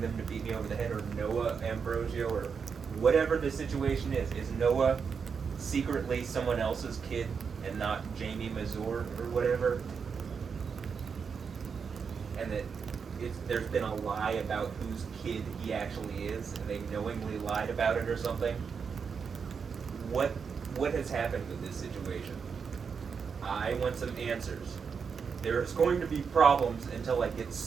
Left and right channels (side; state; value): left; quieter; 6.0 dB